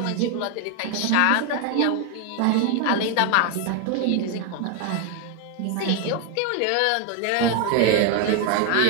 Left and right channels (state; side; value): different; both; correlation 0.01